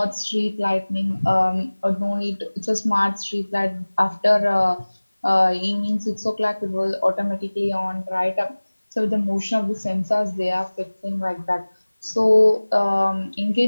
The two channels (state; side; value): inverted; both; correlation -1.00